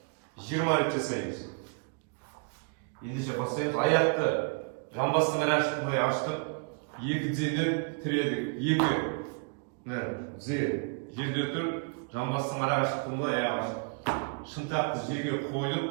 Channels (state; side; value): quieter; left; 39.6 dB